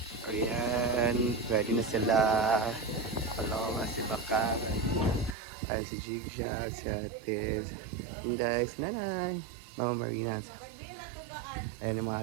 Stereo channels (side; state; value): left; drops out; at 5.4 s